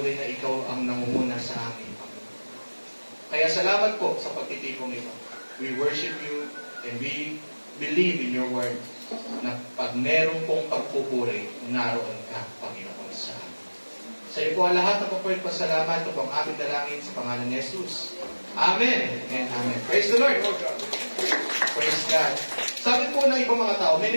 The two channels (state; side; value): inverted; both; correlation -1.00